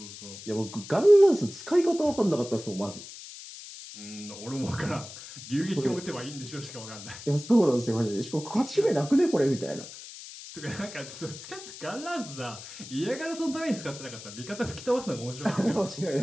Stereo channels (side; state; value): left; noise; hiss, 13 dB below the sound